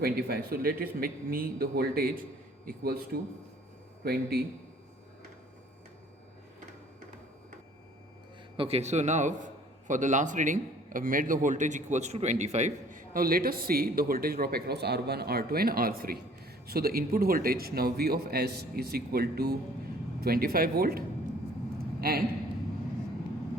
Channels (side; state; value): both; normal; correlation 0.55